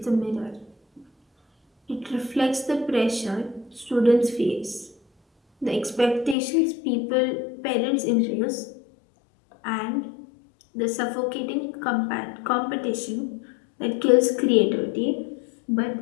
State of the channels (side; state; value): right; drops out; at 6.4 s